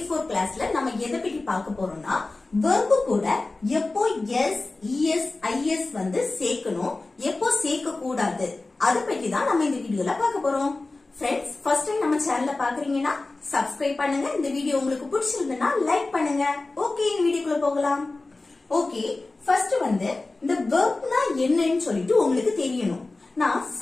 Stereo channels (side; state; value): right; quieter; 3.3 dB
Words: 4 கிளாஸ்ல நம்ம எதை பத்தி பார்க்க போறோம்னா verb கூட எப்போ s, es, is வந்து சேர்க்கணும், எப்போ சேர்க்க கூடாது அத பத்தி தான் நம்ம இந்த வீடியோல பார்க்க போறோம். Friends, first time நம்ம சேனல்ல பாக்குறீங்கன்னா subscribe பண்ணுங்க. இந்த வீடியோ உங்களுக்கு பிடிச்சிருந்தா லைக் பண்ணுங்க. ஓகே, இந்த வீடியோக்குள்ள போகலாம். ஓகே, ஃபர்ஸ்ட் வந்து இந்த வெர்ப்னா என்னன்னு சொல்லிட்டு உங்களுக்கு தெரியணும். நான்